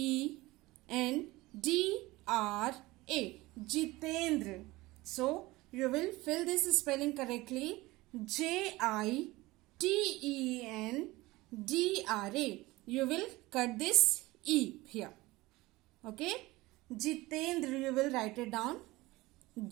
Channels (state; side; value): quieter; left; 20.1 dB